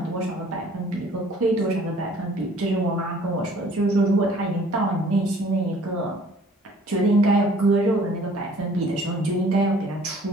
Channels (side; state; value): both; normal; correlation 0.54